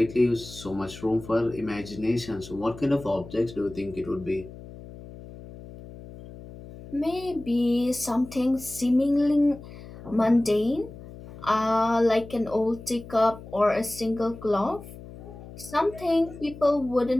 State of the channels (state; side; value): noise; left; hum, 16 dB below the sound